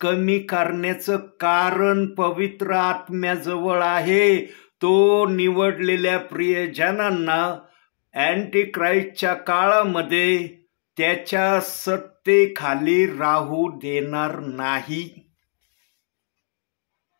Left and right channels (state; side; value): silent; right; digital silence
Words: करण्याचं कारण पवित्र आत्म्याजवळ आहे. तो निवडलेल्या प्रियजनांना अँटी क्राइस्टच्या काळामध्ये त्याच्या सत्तेखाली राहू देणार नाही.